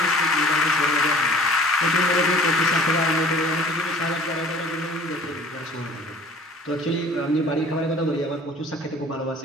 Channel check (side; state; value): both; normal; correlation 0.48